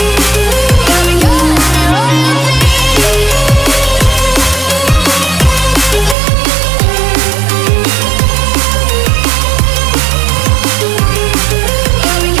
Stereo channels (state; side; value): drops out; left; at 6.2 s